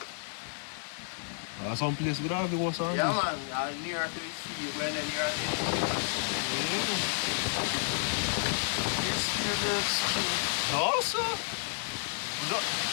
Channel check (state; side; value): silent; right; digital silence